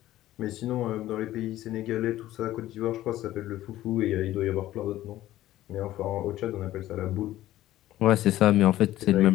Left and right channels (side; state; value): right; quieter; 14.5 dB